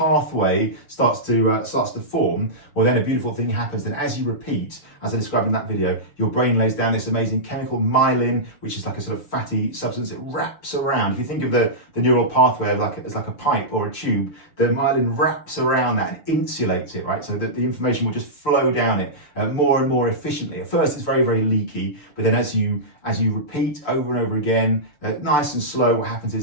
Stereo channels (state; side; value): late; right; 6.9 ms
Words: starts to form, well, then a beautiful thing happens. Then as you repeat, as I described in that video, your brain lays down this amazing chemical myelin, which is like a sort of fatty substance that wraps around. If you think of the neural pathway as like a pipe or a tube, the myelin wraps around that and insulates it, right? So that the information will just flow down it more and more efficiently. At first, it's very leaky, but then as you repeat over and over again, nice and slow, what happens